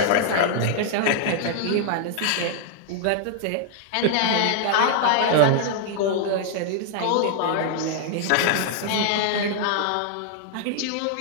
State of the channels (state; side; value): different; both; correlation -0.01